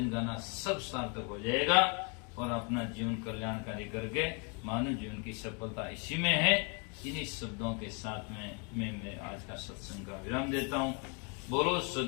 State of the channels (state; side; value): quieter; right; 34.6 dB